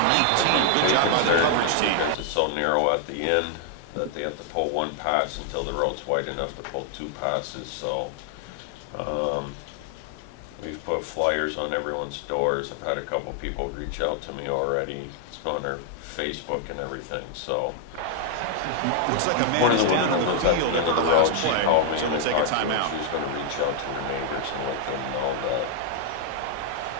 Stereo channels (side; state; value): both; different; correlation 0.00